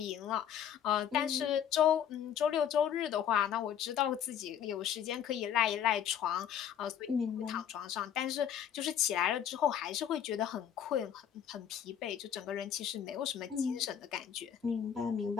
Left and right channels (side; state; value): right; quieter; 9.2 dB